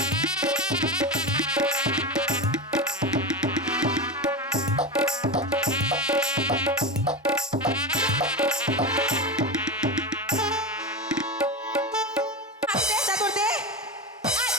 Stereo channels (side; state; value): both; normal; correlation 0.19